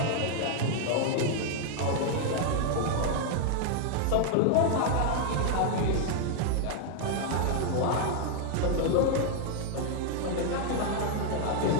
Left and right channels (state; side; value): different; both; correlation 0.00